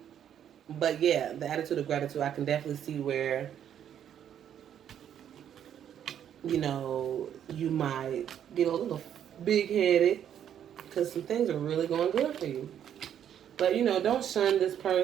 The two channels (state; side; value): quieter; left; 9.6 dB